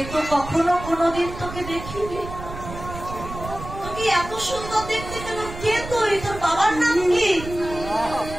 তো কখনো কোনোদিন তোকে দেখিনি। তোকে এত সুন্দর দেখতে কেন? কে তুই? তোর বাবার নাম কি?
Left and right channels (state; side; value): noise; right; rumble, 11 dB below the sound